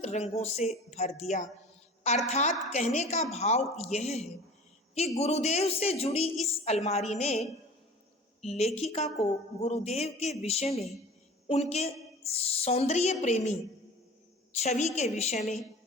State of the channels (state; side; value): normal; both; correlation 0.41